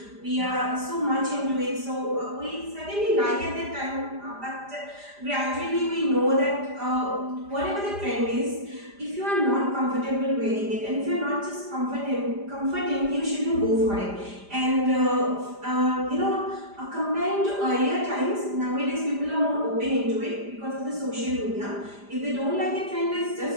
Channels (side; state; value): left; late; 5.0 ms